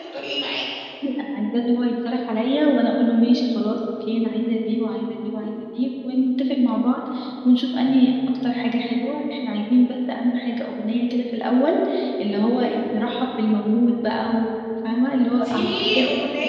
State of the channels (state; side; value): identical; both; correlation 1.00